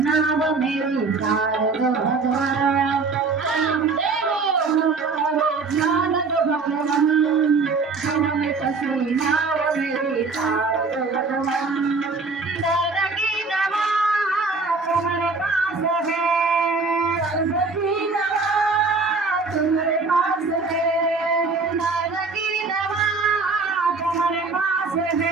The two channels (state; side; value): quieter; left; 4.2 dB